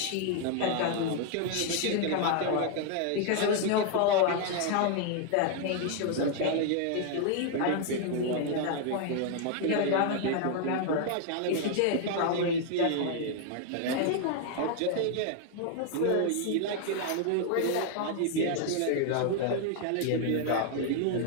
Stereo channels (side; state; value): both; different; correlation 0.00